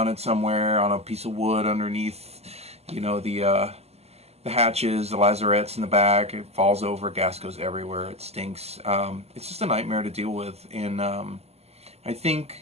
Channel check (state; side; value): late; left; 0.30 ms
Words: somewhere on a piece of wood underneath, you know, the hatches, the lazarettes in the back, it falls over, gas goes everywhere, it stinks. It's just a nightmare to deal with, and I